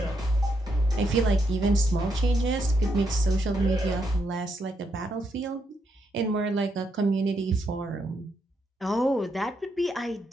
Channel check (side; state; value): both; normal; correlation 0.79